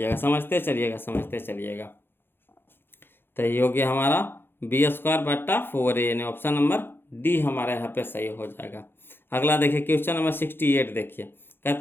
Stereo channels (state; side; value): late; right; 0.10 ms